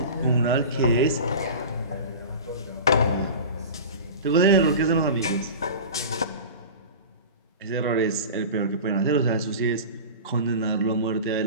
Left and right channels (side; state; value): both; inverted; correlation -0.32